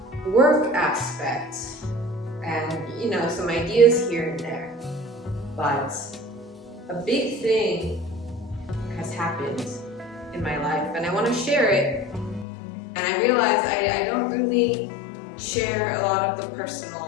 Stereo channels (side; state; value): right; drops out; at 12.5 s